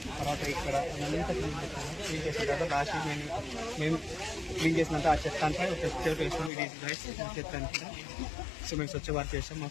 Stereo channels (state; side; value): drops out; right; at 6.5 s